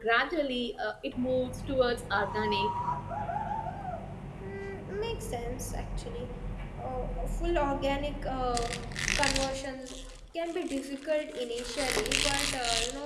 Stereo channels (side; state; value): both; identical; correlation 1.00